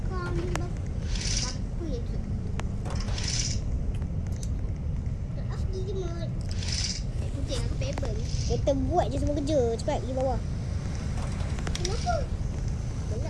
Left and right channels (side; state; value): both; identical; correlation 1.00